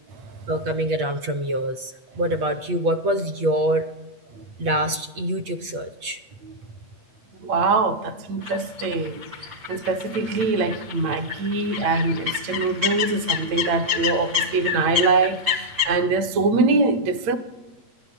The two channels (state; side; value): late; left; 8.3 ms